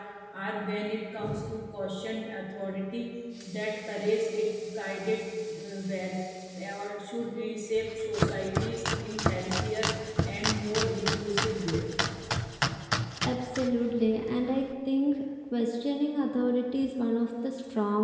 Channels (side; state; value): both; identical; correlation 1.00